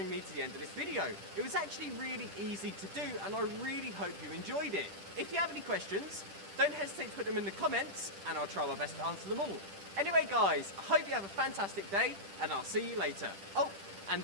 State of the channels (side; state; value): left; late; 10 ms